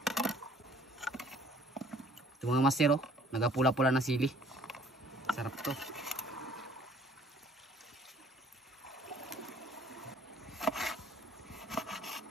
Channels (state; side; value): normal; both; correlation 0.57